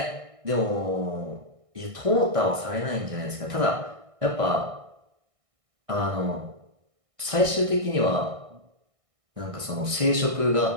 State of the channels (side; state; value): left; late; 1.6 ms